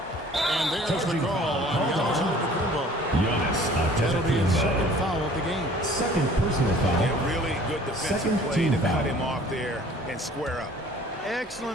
And there's the call on Giannis Antetokounmpo. Giannis That'll be his second Antetokounmpo. foul of the game. Second personal foul. Yeah, really good defensive Second play team to foul. cut him off there and square up.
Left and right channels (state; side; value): normal; both; correlation 0.51